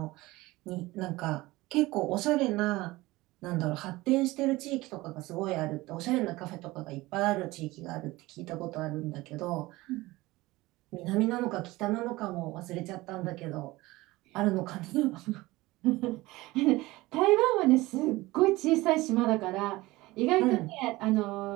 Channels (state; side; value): quieter; left; 19.8 dB